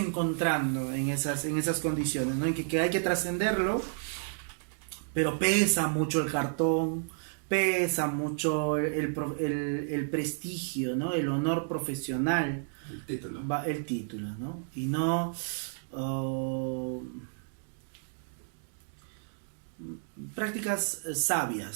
en esas condiciones, ¿no? En que hay que trascenderlo, pero pesa mucho el cartón, pesa mucho el prestigio, ¿no? El honor profesional. El título, ¿no? Y no... prácticas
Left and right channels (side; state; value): left; silent; digital silence